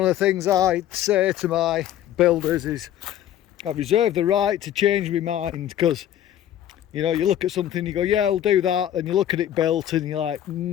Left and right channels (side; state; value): right; quieter; 11.4 dB